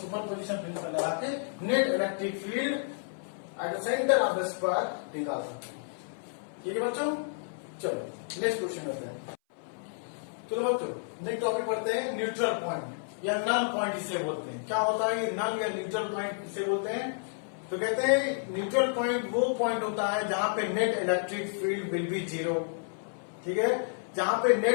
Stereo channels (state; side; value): silent; right; 57 dB below the other